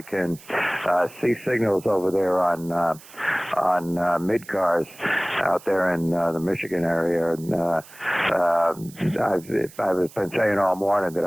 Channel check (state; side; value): noise; right; hiss, 21 dB below the sound